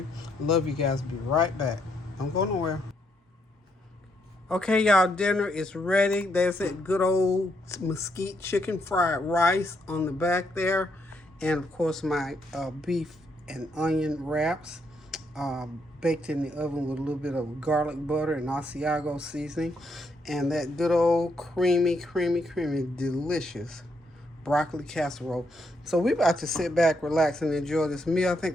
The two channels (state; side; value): normal; both; correlation 0.76